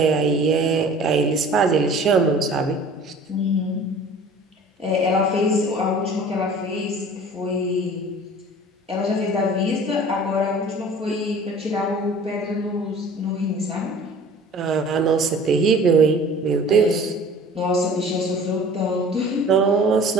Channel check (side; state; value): both; normal; correlation 0.46